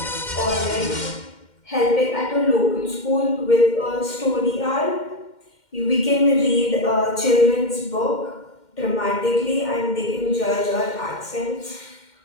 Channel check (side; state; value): right; late; 2.1 ms